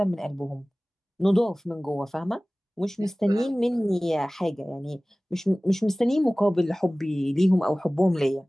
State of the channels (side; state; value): both; normal; correlation 0.98